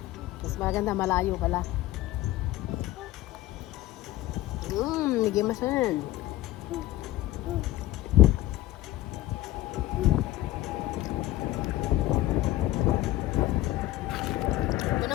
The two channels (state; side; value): quieter; right; 15.7 dB